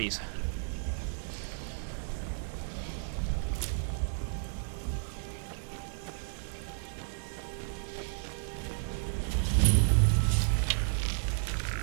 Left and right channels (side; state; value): left; silent; 56 dB below the other